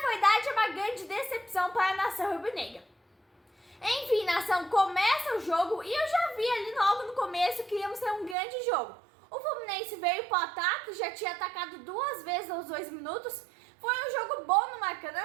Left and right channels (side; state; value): left; drops out; at 8.3 s